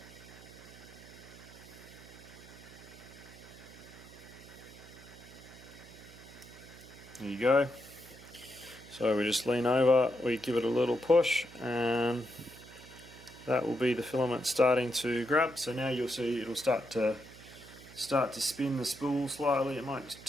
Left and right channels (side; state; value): right; noise; hum, 19 dB below the sound